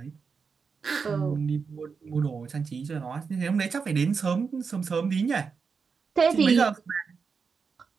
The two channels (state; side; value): quieter; left; 5.5 dB